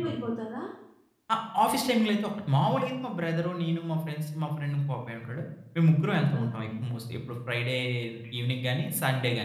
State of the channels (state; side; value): identical; both; correlation 1.00